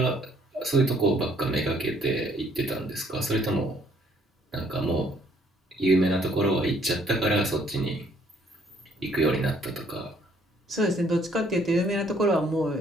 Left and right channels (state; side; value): normal; both; correlation 0.63